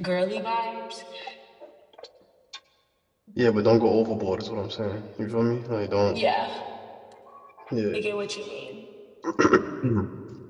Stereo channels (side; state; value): both; identical; correlation 1.00